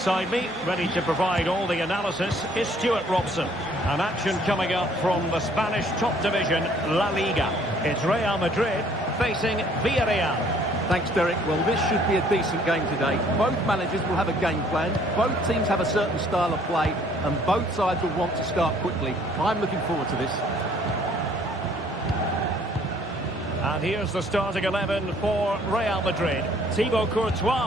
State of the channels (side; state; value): both; normal; correlation 0.60